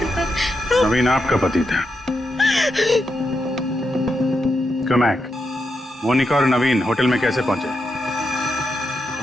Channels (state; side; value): normal; both; correlation 0.84